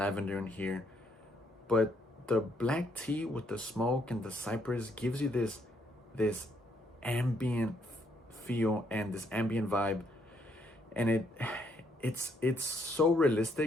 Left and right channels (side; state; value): both; normal; correlation 0.72